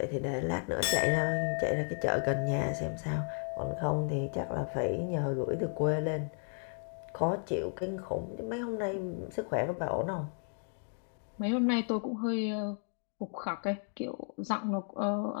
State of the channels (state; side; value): silent; right; 55 dB below the other